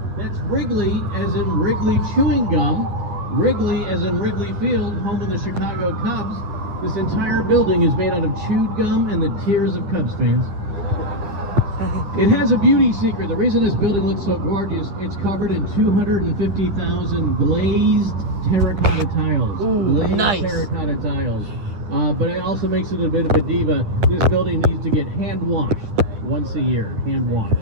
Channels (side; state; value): left; late; 9.8 ms